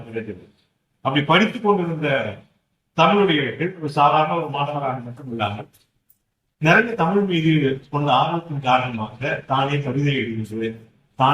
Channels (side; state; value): both; identical; correlation 1.00